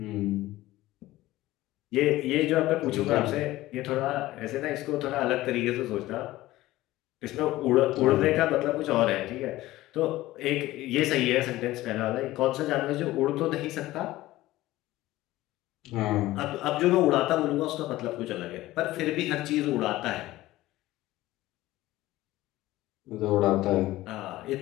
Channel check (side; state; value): right; quieter; 16.9 dB